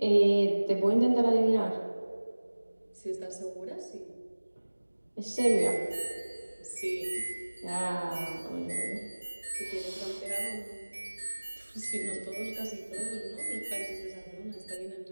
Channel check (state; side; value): inverted; both; correlation -1.00